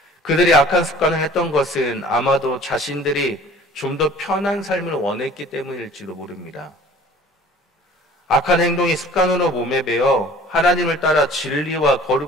그들이 악한 습관을 했던 것은 아마도 자신들이 좀 더 편한 삶을 원했기 때문일지도 모릅니다. 악한 행동이 습관으로 몸에 배어 하나님을 따라 진리와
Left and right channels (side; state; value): both; normal; correlation 0.48